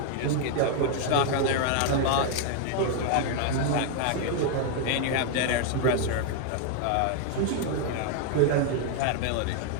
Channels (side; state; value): both; different; correlation 0.00